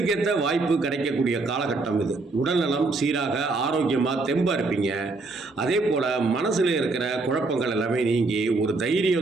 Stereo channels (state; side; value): quieter; left; 3.6 dB